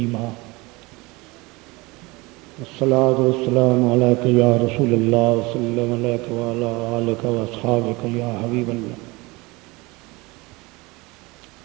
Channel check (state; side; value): quieter; left; 23.9 dB